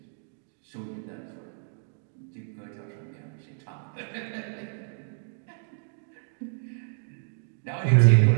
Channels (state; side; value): silent; left; digital silence